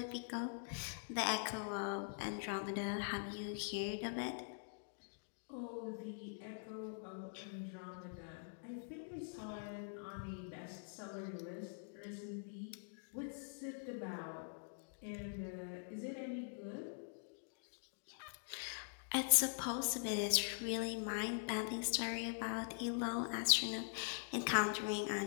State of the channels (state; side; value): silent; right; digital silence